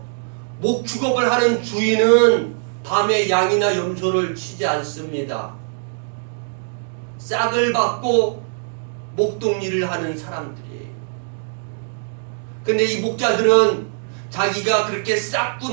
목축업을 하는 주인은 밤에 양이나 염소를 치지 않습니다. 싹을 받고 목동일을 하는 사람들이에요. 근데 이 목자들은 자기가 그렇게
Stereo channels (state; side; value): silent; left; digital silence